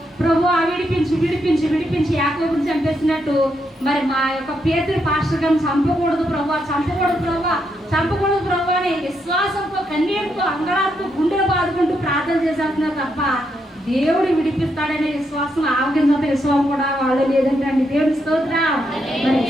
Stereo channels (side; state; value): both; normal; correlation 0.79